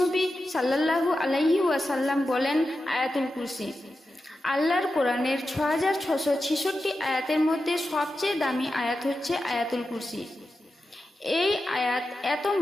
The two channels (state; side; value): normal; both; correlation 0.91